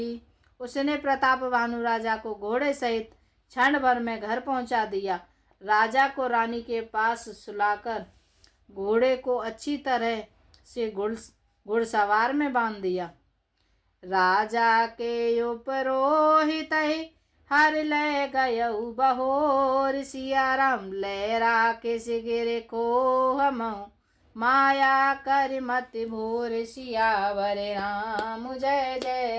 उसने प्रताप भानु राजा को घोड़े सहित क्षण भर में घर पहुंचा दिया। राजा को रानी के पास सुलाकर घोड़े को अच्छी तरह से घुड़सवार में बांध दिया। राजा के उपरोहित हर ले गयऊ बहोर, सिया राम लहरा के सिगिर को हम माया कर मत भोर। सियावर राम जय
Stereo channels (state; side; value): identical; both; correlation 1.00